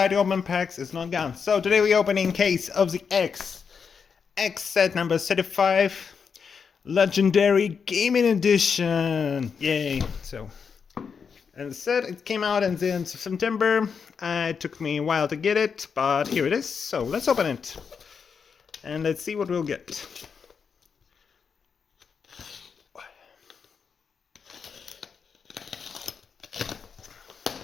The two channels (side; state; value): right; quieter; 6.2 dB